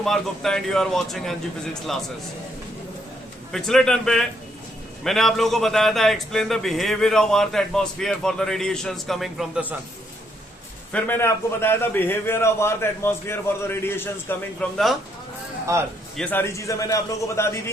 Gupta and you are watching NG Physics classes. पिछले टर्न पे मैंने आप लोगों को बताया था explain the behaviour of earth atmosphere for the radiations coming from the sun. फिर मैंने आपको बताया था behaviour of earth atmosphere for the radiations coming from the earth. ये सारी चीजें मैंने आप लोगों को बता दी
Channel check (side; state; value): both; normal; correlation 0.73